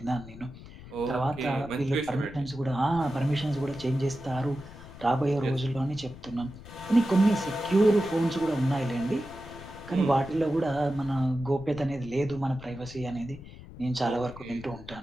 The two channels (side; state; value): left; noise; rumble, 16 dB below the sound